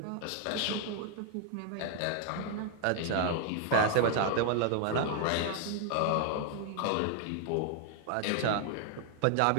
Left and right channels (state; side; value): different; both; correlation 0.00